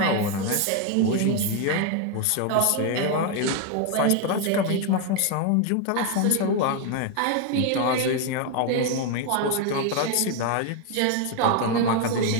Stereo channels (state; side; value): different; both; correlation 0.01